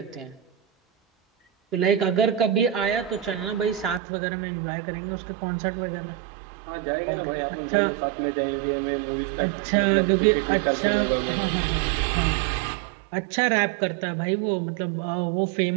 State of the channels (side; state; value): left; drops out; at 4.0 s